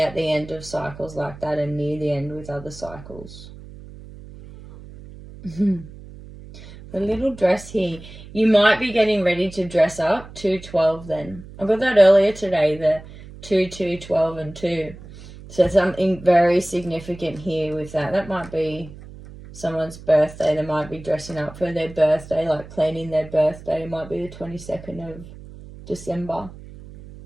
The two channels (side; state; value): right; noise; hum, 17 dB below the sound